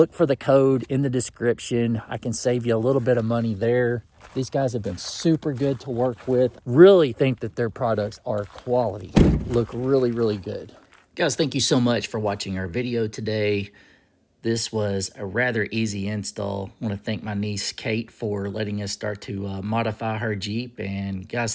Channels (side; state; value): both; identical; correlation 1.00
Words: for the code in the description. I can save you a little bit of money there. These guys have been super good to work with. Really think that their products are quality. Look really, really good. Guys, thank you so much for watching our video today. This was a rather easy install. I want to thank my niece, Kate, for letting us start to modify her Jeep. And